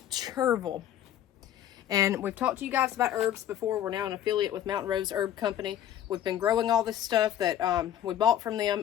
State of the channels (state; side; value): quieter; right; 11.1 dB